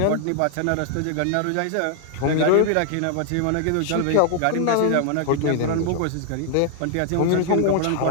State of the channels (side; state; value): both; different; correlation -0.01